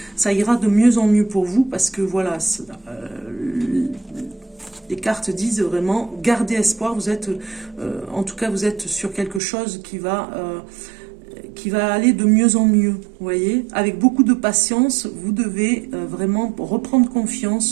ça ira de mieux en mieux pour vous, parce que voilà, les cartes disent vraiment garder espoir. Vous êtes, en tout cas, vous êtes sur quelque chose qui va aller de mieux en mieux. Vous voyez, avec beaucoup de patience, vous devez vraiment reprendre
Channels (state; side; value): drops out; left; at 9.4 s